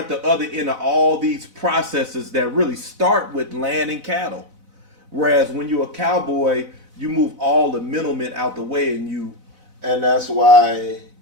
other end of all these processes that really start with land and cattle. Whereas when you're a cowboy, you move all the middlemen out the way, and that's why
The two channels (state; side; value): late; left; 4.0 ms